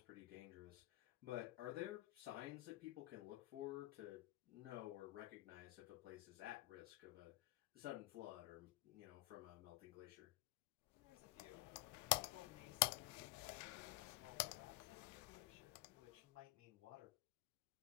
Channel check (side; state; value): right; quieter; 19.5 dB